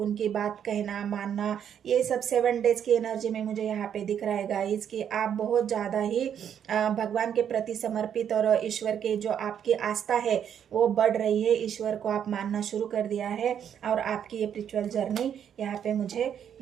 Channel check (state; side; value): quieter; left; 8.8 dB